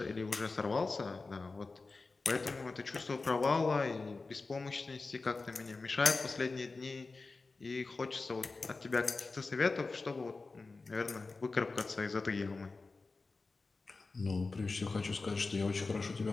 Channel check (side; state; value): right; quieter; 3.8 dB